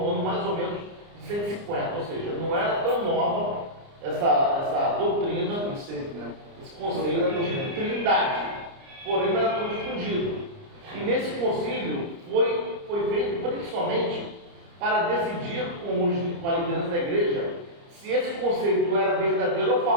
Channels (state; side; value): late; left; 29 ms